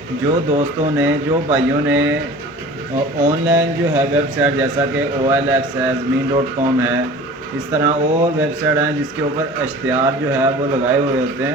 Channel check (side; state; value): both; normal; correlation 0.42